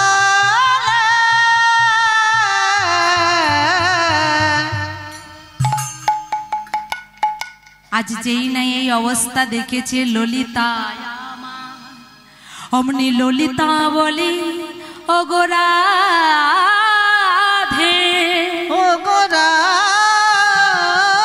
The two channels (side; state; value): both; identical; correlation 1.00